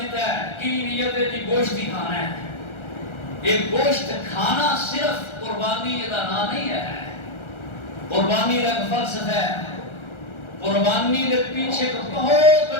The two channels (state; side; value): late; right; 1.4 ms